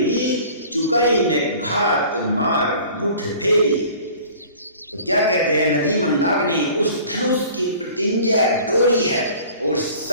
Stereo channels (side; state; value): both; inverted; correlation -0.46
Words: चुकई ने घात मार मुठ फेरी। तो क्या कहते हैं, नदी मंदाकिनी उस धनुष की प्रतिज्ञा डोरी है और